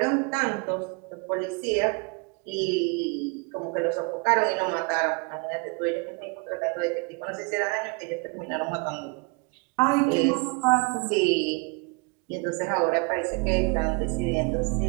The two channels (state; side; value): quieter; left; 30.6 dB